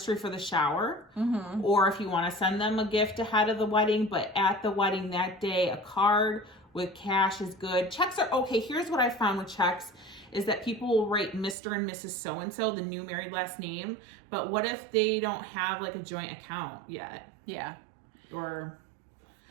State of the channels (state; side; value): drops out; left; at 11.6 s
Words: for the shower. Mm-hmm. Or if you want to send them a gift ahead of the wedding, but at the wedding that day, a card with cash is good. Checks are okay. Here's what I found with checks is that people will write Mr. and Mrs. So-and-so, the new married last name. But what if they don't have a joint account yet? Yeah. Or